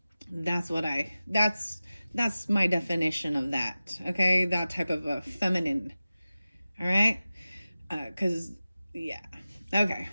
that's my definition of that. Okay, that type of a feminine. All right, because yeah, okay.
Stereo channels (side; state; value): both; inverted; correlation -0.96